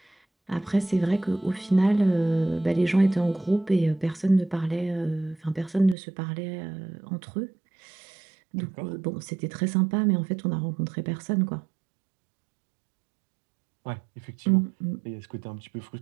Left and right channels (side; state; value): left; drops out; at 6.0 s